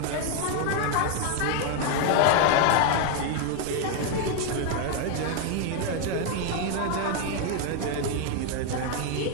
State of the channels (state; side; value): different; both; correlation 0.01